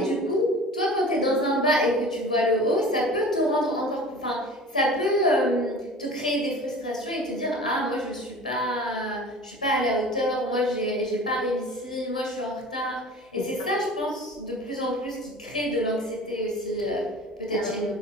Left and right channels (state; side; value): normal; both; correlation 0.40